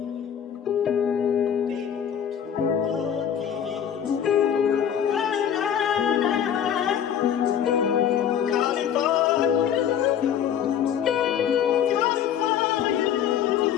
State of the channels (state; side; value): quieter; right; 9.0 dB